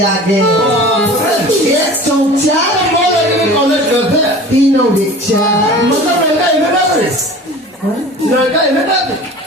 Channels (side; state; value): both; normal; correlation 0.40